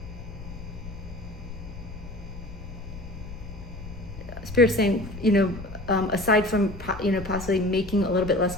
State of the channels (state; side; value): noise; left; rumble, 12 dB below the sound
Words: Spirit's saying, aside from possibly making a little bit